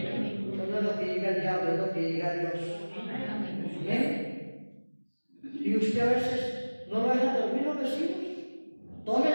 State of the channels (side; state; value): both; inverted; correlation -1.00